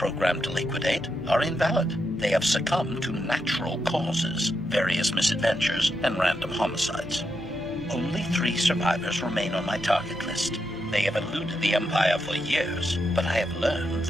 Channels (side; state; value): both; normal; correlation 0.83